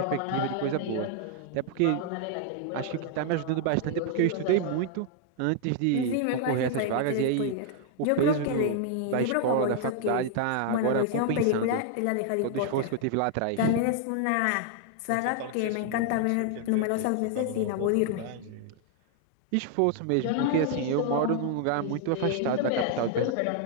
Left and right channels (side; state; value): both; different; correlation 0.00